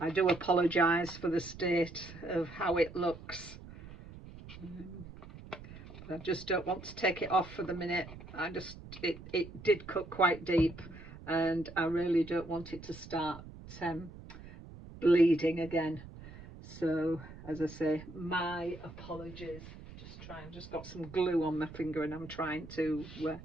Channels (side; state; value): right; noise; rumble, 15 dB below the sound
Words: do apologise for the state of how it looks. I just don't want to take it off for the minute. It did cut quite deep, and I really don't want it to start bleeding again. So as I say, my apologies. Just got some glue on my finger and I'm trying to